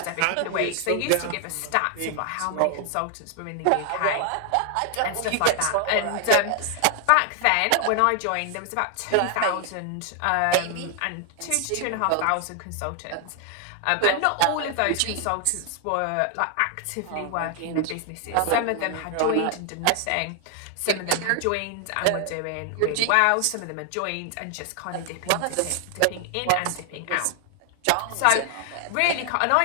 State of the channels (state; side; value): different; both; correlation 0.00